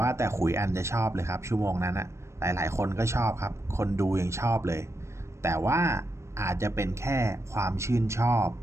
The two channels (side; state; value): left; late; 0.13 ms